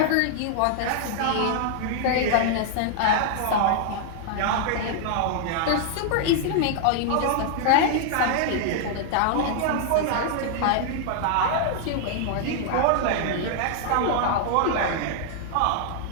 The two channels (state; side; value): different; both; correlation 0.00